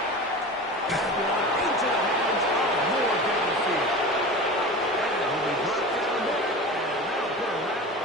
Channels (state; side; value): normal; both; correlation 0.32